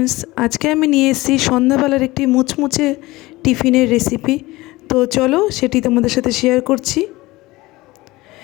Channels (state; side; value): quieter; right; 20.0 dB